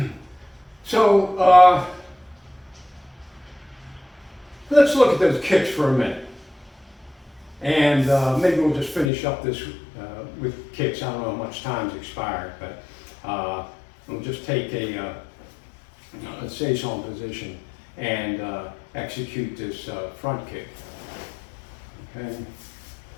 So let's look at those kicks for a minute. And maybe we'll just finish up this with kicks. I don't know how much time's expired, but we'll just take a seison position and execute this front kick. Okay.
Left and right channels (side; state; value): right; drops out; at 9.1 s